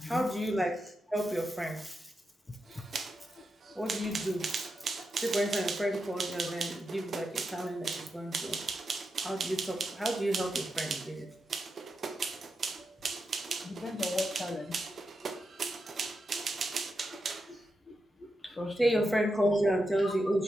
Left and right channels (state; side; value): normal; both; correlation 0.87